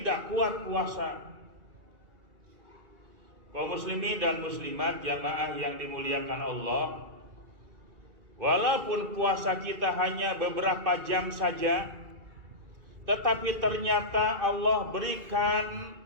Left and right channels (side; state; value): left; late; 2.3 ms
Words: kuat puasa. Kaum muslimin dan muslimat jamaah yang dimuliakan Allah, walaupun puasa kita hanya beberapa jam saja, tetapi ternyata Allah berikan